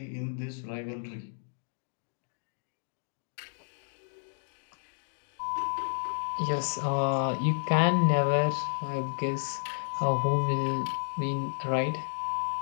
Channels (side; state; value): right; silent; digital silence